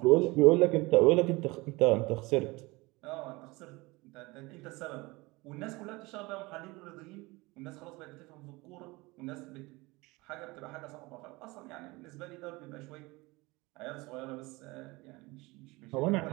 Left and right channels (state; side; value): quieter; left; 23.1 dB